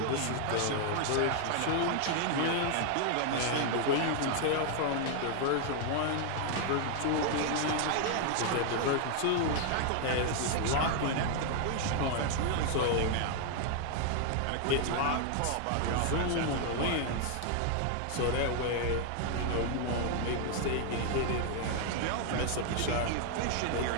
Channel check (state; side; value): different; both; correlation 0.00